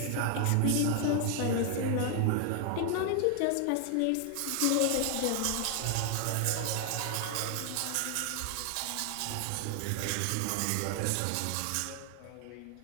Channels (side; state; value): both; different; correlation 0.00